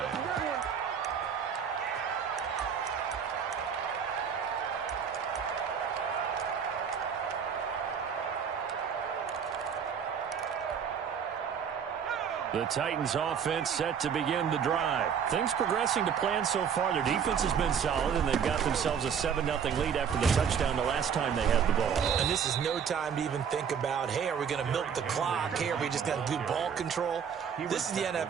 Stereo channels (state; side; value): quieter; left; 7.4 dB